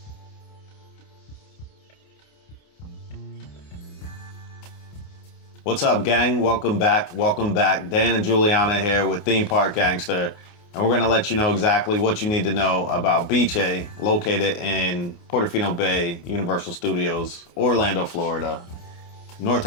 What's up, gang? Welcome back. Welcome back. Dan and Juliana here with Theme Park Gangster. And we're going to let you know exactly what you need to know about Bice, located in Portofino Bay, Universal Studios, Orlando, Florida, North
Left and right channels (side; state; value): right; late; 28 ms